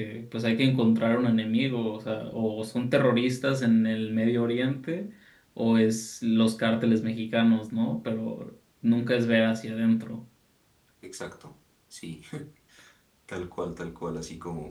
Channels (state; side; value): identical; both; correlation 1.00